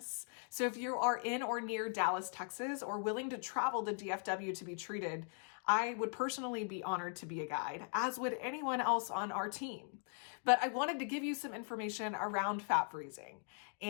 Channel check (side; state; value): right; silent; 51 dB below the other